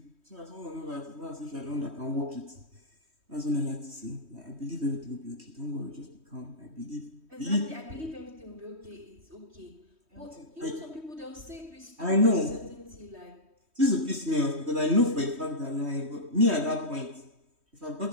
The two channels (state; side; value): late; left; 3.2 ms